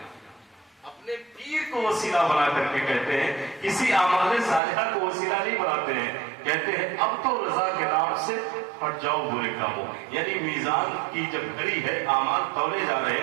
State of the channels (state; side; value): drops out; left; at 4.6 s